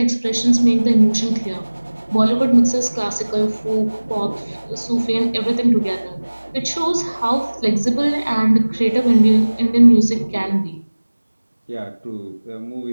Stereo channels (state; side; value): inverted; both; correlation -1.00